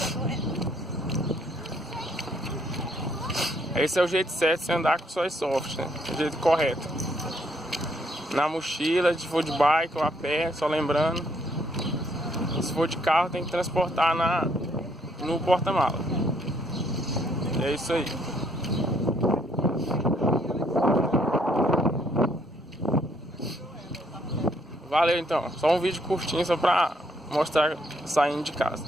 doendo. Esse é o jeito certo de você andar com sua Airsoft, né? O jeito correto. Na mochila, se for de bike ou a pé, só lembrando. E se for de carro, tem que transportar no porta-mala. E é isso aí. Valeu então. Só um vídeo curtinho só pra mostrar saindo de casa,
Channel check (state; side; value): normal; both; correlation 0.69